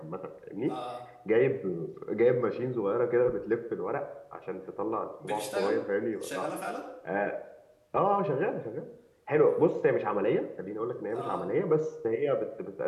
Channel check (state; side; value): identical; both; correlation 1.00